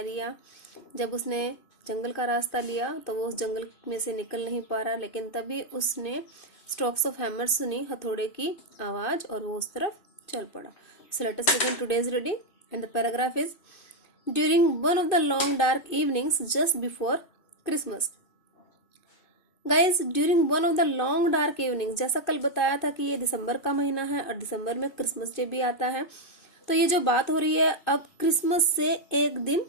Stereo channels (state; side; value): late; right; 2.5 ms